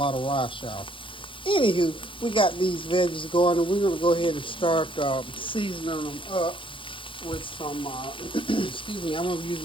of rice, y'all. Anywho, we got these veggies going, and we're going to go ahead and start seasoning them up with some, excuse me, I'm going to use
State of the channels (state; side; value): late; right; 0.25 ms